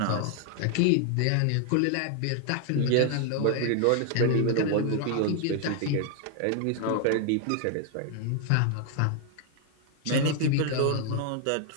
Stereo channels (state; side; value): different; both; correlation 0.00